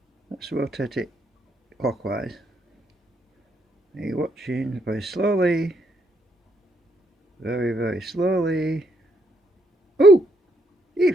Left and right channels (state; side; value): normal; both; correlation 0.74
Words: Let's rotate it clockwise. Are you watching? Very slowly. Very, very slowly. Oh!